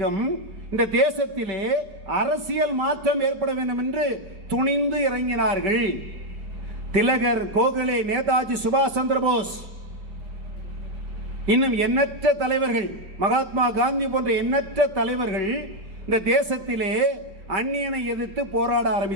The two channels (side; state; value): left; late; 5.2 ms